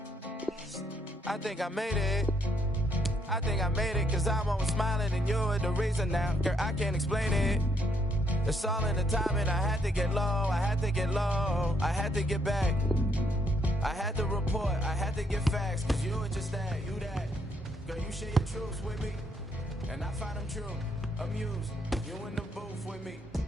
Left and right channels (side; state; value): both; normal; correlation 0.74